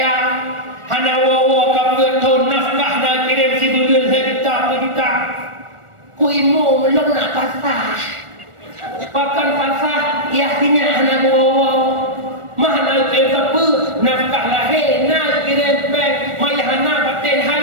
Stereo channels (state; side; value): late; left; 1.4 ms